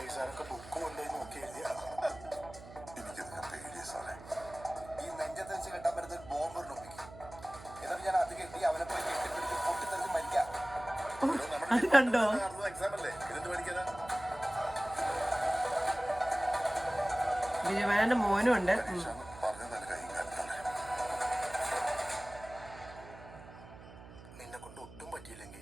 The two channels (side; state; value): right; noise; hum, 17 dB below the sound